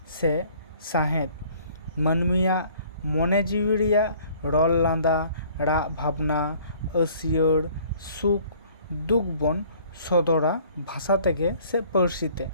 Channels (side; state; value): both; inverted; correlation -0.55